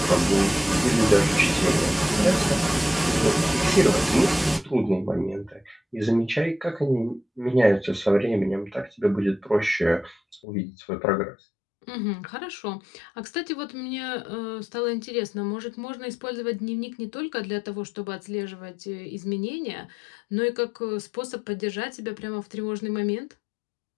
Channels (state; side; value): drops out; right; at 10.4 s